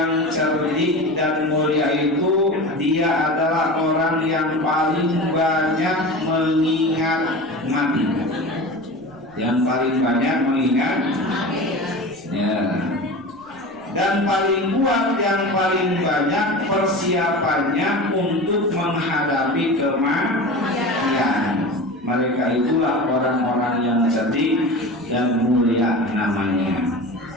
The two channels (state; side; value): noise; right; rumble, 29 dB below the sound